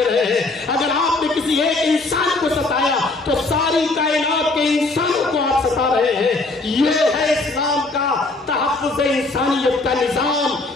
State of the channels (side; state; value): right; quieter; 3.3 dB